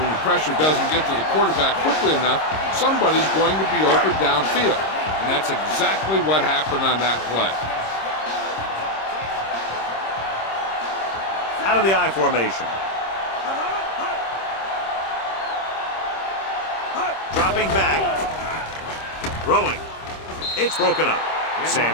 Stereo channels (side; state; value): right; late; 26 ms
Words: the pressure doesn't get to the quarterback quickly enough, somebody's going to be open downfield. And that's exactly what happened on that play. Out of the I formation. Dropping back. Throwing. It's broken up.